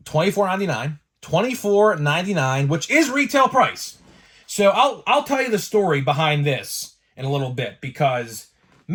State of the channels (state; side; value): identical; both; correlation 1.00